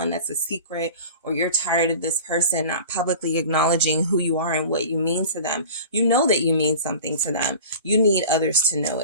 that's a secret, or you're tired of this person not publicly acknowledging who you are and what you mean to them. You know that you mean something to them. You need others to know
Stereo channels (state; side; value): inverted; both; correlation -0.39